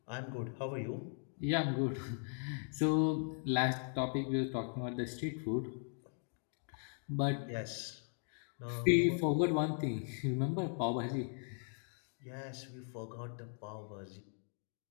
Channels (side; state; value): right; silent; 52 dB below the other